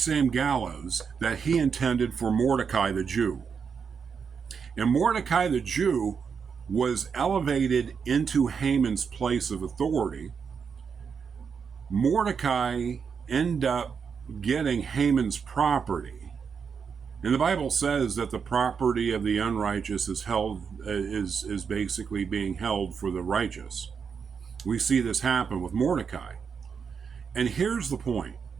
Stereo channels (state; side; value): quieter; left; 6.2 dB